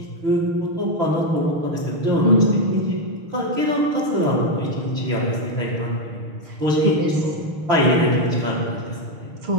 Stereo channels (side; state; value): left; late; 6.4 ms